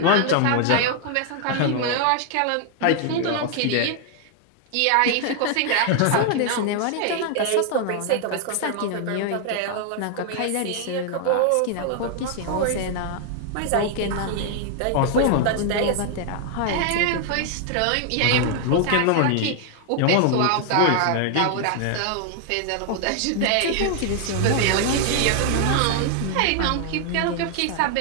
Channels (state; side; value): different; both; correlation 0.00